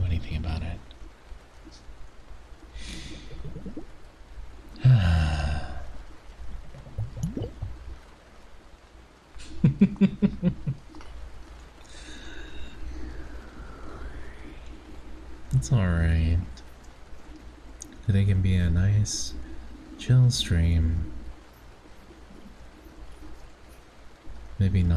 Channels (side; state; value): both; identical; correlation 1.00